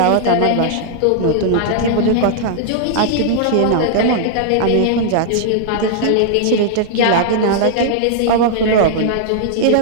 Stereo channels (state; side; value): different; both; correlation -0.01